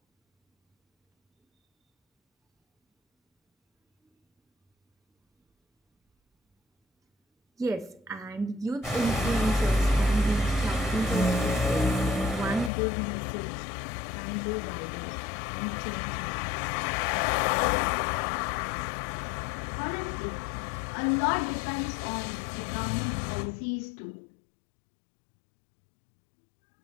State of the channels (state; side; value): drops out; right; at 12.7 s